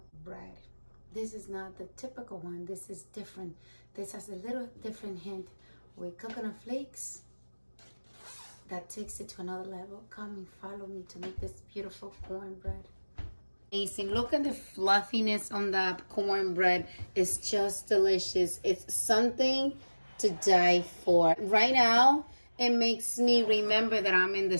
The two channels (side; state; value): both; inverted; correlation -1.00